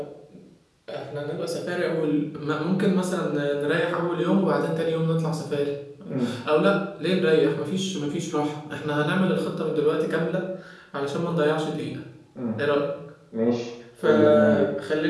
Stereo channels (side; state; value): both; identical; correlation 1.00